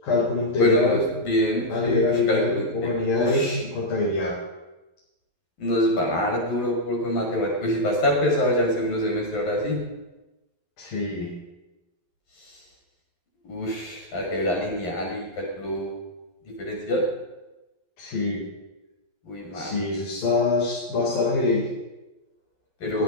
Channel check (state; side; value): late; right; 11 ms